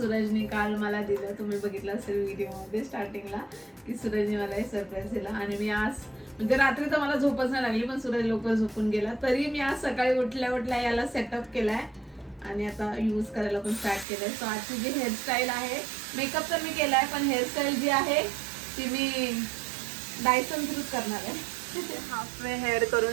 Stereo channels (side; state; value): left; drops out; at 14.1 s